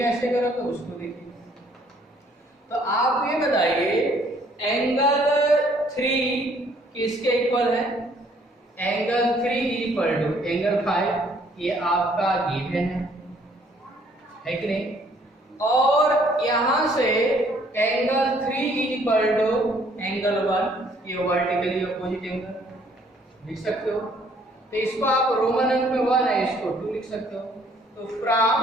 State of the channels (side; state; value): both; normal; correlation 0.62